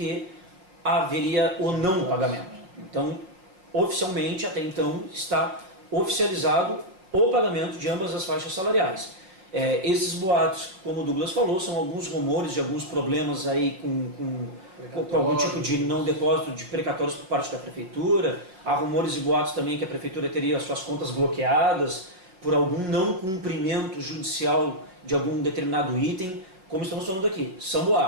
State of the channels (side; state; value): left; late; 5.5 ms